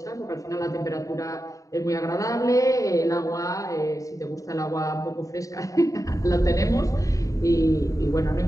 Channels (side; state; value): right; late; 0.16 ms